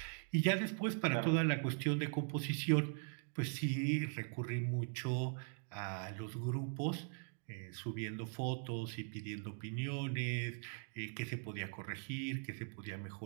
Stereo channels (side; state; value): left; silent; 51 dB below the other